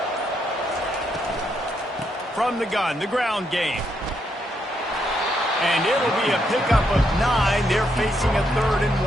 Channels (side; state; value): both; normal; correlation 0.77